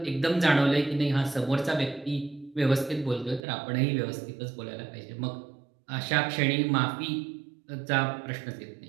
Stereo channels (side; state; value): left; drops out; at 3.4 s